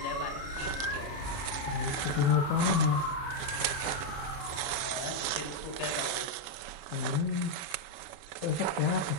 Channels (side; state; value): right; late; 35 ms